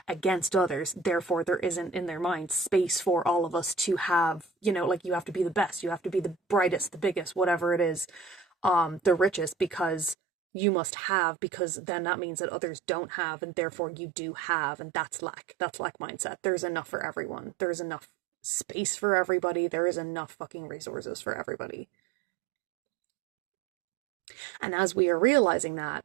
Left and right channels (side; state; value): left; drops out; at 10.2 s